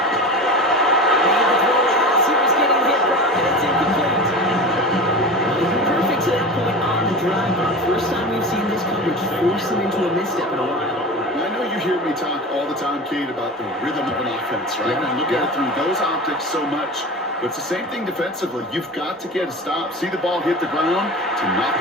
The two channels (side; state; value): both; normal; correlation 0.31